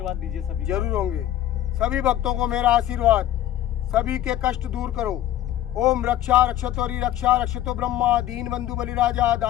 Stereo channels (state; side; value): quieter; right; 12.7 dB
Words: दीजिए सभी। जरूर होंगे। सभी भक्तों को मेरा आशीर्वाद। सभी के कष्ट दूर करो। ओम रक्षा रक्षतोरी रक्षा रक्षतो ब्रह्मा दीन बंधु बलिराजा